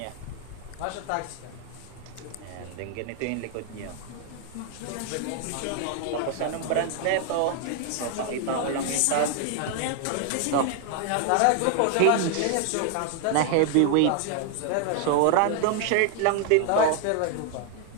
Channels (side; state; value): both; different; correlation 0.00